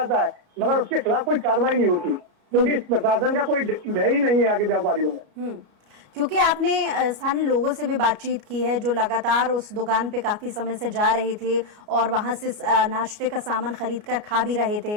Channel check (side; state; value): left; late; 29 ms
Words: है, मगर उसके खिलाफ कोई कार्रवाई नहीं होती, क्योंकि प्रशासन का कोई भय ही नहीं है आगे व्यापारियों में। क्योंकि आपने स्थानीय लोगों से भी बातचीत की है जो लगातार उस दुकान पे काफी समय से जा रहे थे और वहां से नाश्ते का सामान खरीद कर खा भी रहे थे,